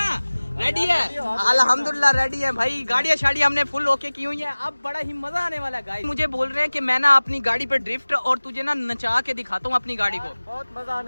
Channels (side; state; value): both; inverted; correlation -1.00